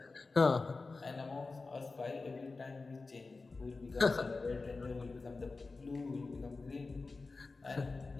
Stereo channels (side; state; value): right; quieter; 3.8 dB